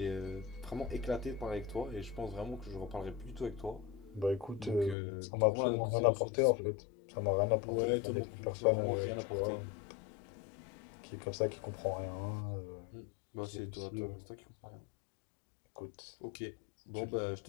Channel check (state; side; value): drops out; right; at 5.0 s